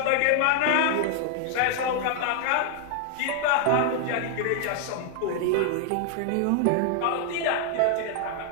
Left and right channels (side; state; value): both; different; correlation 0.00